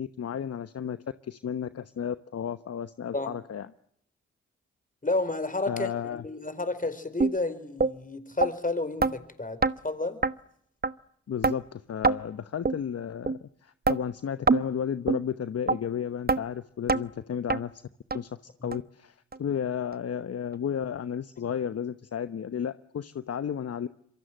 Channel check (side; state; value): both; normal; correlation 0.05